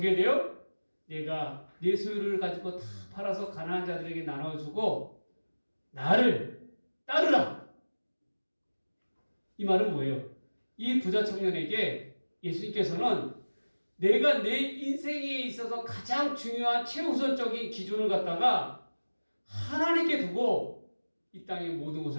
돼요? 내가 내 소유를 가지고 다 팔아서 가난한 자들에게 나눠주고 나를 따르라. 이 말은 뭐예요? 이 부자 청년에게 예수님께서는 내가 내 인생에 있어서 가장 중요한 최우선적인 기준을 갖다가 하나님께 두고 이 땅의 모든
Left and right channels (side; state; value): both; inverted; correlation -1.00